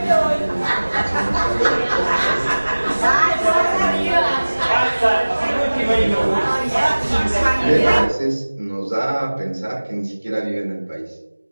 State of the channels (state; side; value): inverted; both; correlation -1.00